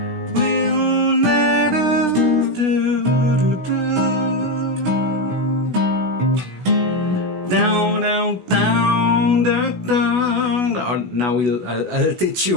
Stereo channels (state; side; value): late; left; 16 ms